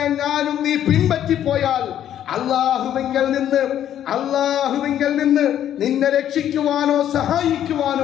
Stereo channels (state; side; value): quieter; right; 10.7 dB